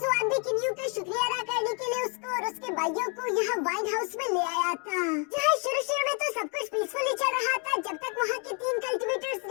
भी किन्यू का शुक्रिया अदा करने के लिए उसको और उसके भाइयों को यहाँ वाइन हाउस में ले आया था, जहाँ शुरू में तो सब कुछ पीसफुली चल रहा था जब तक वहाँ के 3 कल्टिवेटर्स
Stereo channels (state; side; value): quieter; right; 37.5 dB